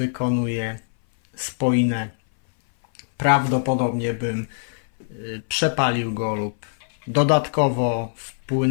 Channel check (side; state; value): right; silent; 60 dB below the other